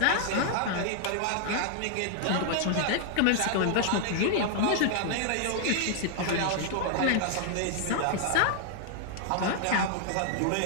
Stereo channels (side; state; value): both; different; correlation 0.00